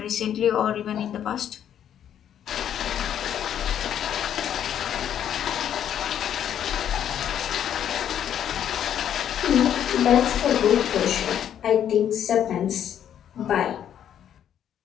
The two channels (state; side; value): quieter; right; 9.8 dB